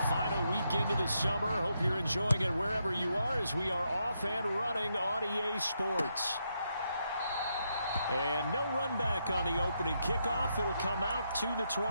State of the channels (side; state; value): both; inverted; correlation -0.80